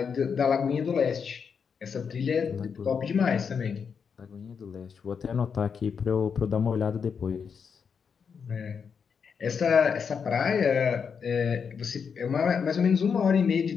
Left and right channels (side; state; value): right; quieter; 6.4 dB